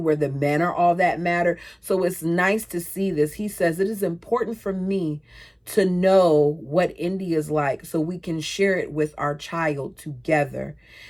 the men are all that matter. So it's nice to see this. He says, it is important for me to know what India's like so we can share it with our child together.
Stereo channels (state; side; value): identical; both; correlation 1.00